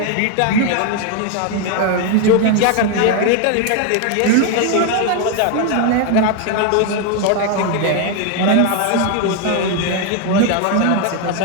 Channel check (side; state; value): both; different; correlation 0.01